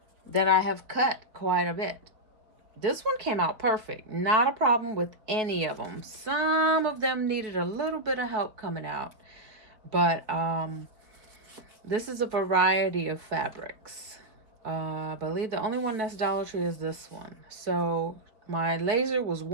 that I have cut quite a bit. This one came out perfect. Not a problem with any of them. Some of them needed a little bit of help coming out. But this is a variety of fabrics. I believe the only one that's Dollar Tree is this one. So my laser was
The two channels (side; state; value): left; late; 4.3 ms